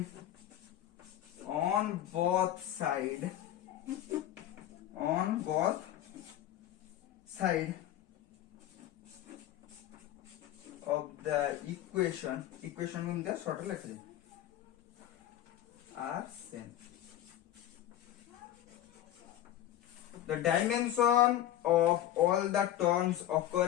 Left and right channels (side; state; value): right; quieter; 12.6 dB